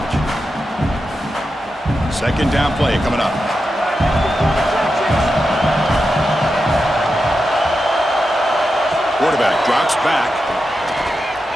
Second down play coming up. Quarterback drops back.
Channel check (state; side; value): normal; both; correlation 0.89